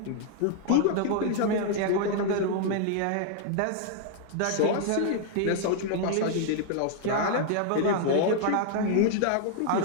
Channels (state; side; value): different; both; correlation 0.00